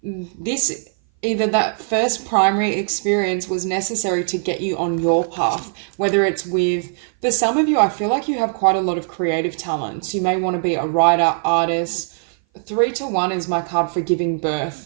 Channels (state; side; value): silent; left; 59 dB below the other